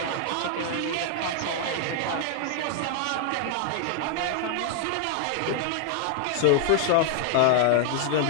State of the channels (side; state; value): both; different; correlation 0.00